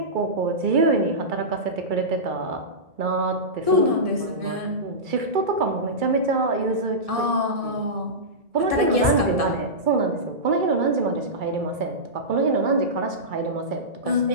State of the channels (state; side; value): late; left; 1.7 ms